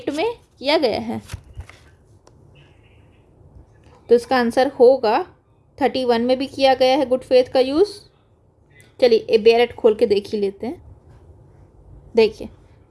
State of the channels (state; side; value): identical; both; correlation 1.00